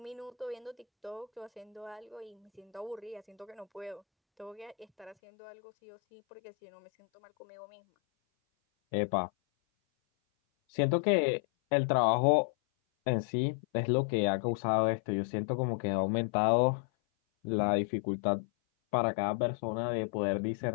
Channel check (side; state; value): right; drops out; at 5.2 s